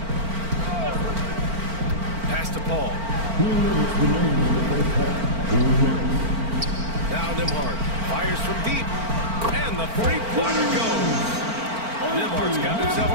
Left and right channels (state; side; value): late; left; 4.4 ms